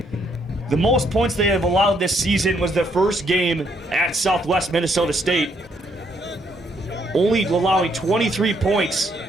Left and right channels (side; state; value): both; normal; correlation 0.71